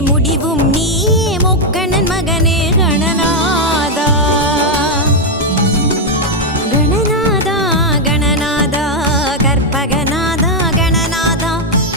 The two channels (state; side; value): normal; both; correlation 0.01